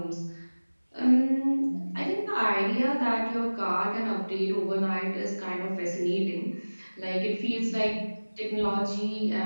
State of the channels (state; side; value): inverted; both; correlation -1.00